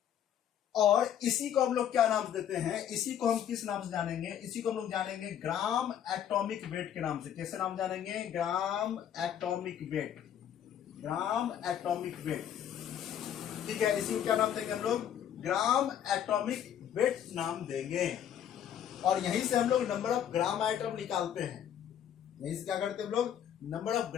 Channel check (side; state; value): right; quieter; 9.7 dB